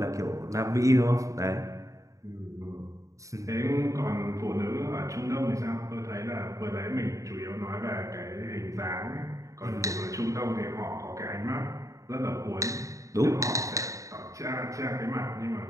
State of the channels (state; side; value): late; left; 0.16 ms